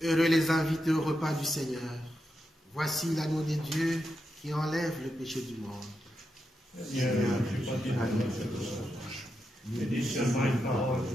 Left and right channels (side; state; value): both; normal; correlation 0.86